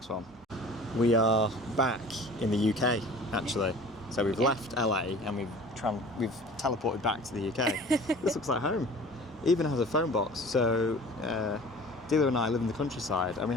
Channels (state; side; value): normal; both; correlation 0.44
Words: one. We are back in the UK, actually. So we've left LA and we've teleported back to the UK. This looks like home. It even has a phone box. So Dealer and I live in the countryside, and we